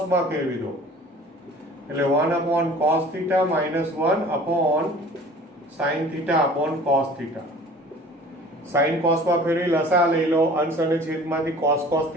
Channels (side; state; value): both; normal; correlation 0.46